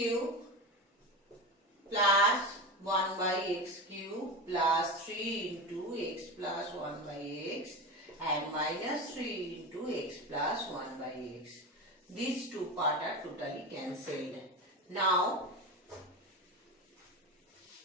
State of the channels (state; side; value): normal; both; correlation 0.23